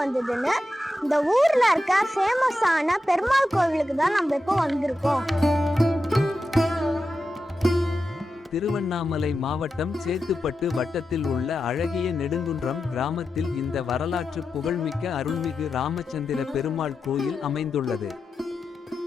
வந்ததுன்னு. இந்த ஊர்ல இருக்க ஃபேமஸான பெருமாள் கோவிலுக்கு தான் நம்ம இப்போ வந்திருக்கோம். திருவண்ணாமலை மாவட்டம் சேத்துப்பட்டு வட்டத்தில் உள்ள அழகிய நெடுங்குன்றம் கிராமத்தில் இந்த வரலாற்று புகழ்மிக்க அருள்மிகு ராமச்சந்திர பெருமாள் கோயில் அமைந்துள்ளது.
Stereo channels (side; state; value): both; normal; correlation 0.90